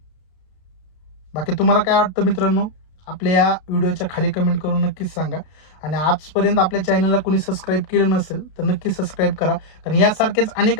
बाकी तुम्हाला काय वाटतं मित्रांनो, आपल्या या व्हिडिओच्या खाली कमेंट करून नक्कीच सांगा. आणि आजपर्यंत आपल्या चॅनलला कोणी सबस्क्राईब केलं नसेल तर नक्की सबस्क्राईब करा, कारण यासारखेच अनेक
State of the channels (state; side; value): late; right; 33 ms